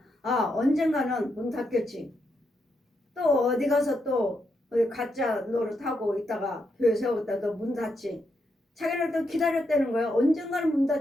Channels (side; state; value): both; normal; correlation 0.82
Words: 아 언젠가는 문 닫겠지. 또 어디 가서 또 가짜 노릇하고 있다가 교회 세웠다 또 문 닫지. 자기는 또 기다렸다는 거예요. 언젠가는 문